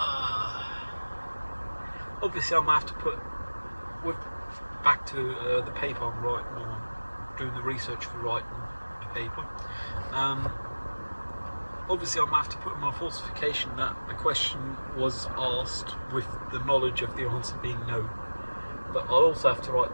Obviously, I'm going to have to put back to the paper I'm writing, or doing the research for writing the paper. Obviously, I'm going to have to put in my falsification that the question was asked with the knowledge of the answer being no. But I'll also have to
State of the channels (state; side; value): inverted; both; correlation -1.00